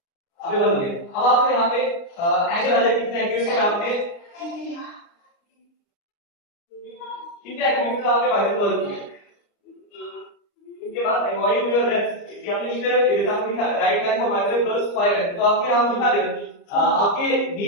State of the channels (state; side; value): late; right; 29 ms